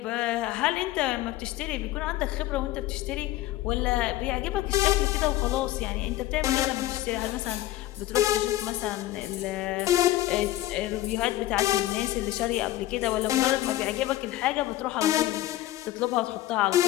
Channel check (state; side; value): quieter; right; 15.3 dB